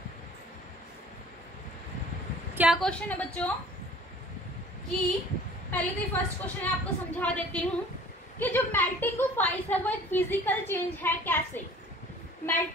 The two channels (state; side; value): normal; both; correlation 0.49